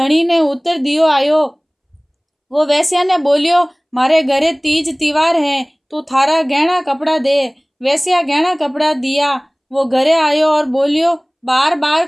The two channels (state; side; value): identical; both; correlation 1.00